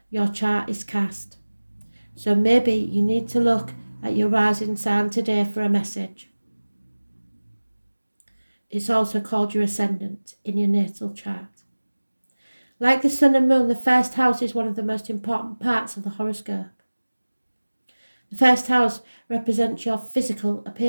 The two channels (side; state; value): both; inverted; correlation -1.00